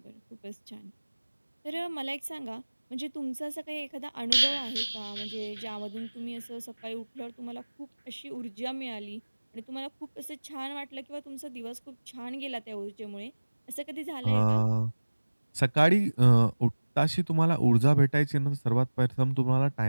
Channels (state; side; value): inverted; both; correlation -1.00